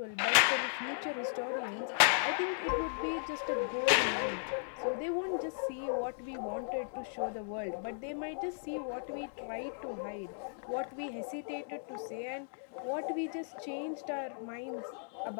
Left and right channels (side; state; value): right; silent; digital silence